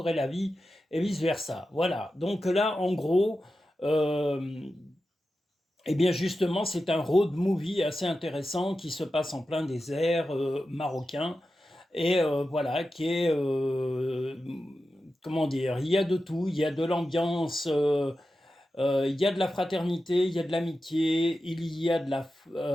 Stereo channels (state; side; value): normal; both; correlation 0.92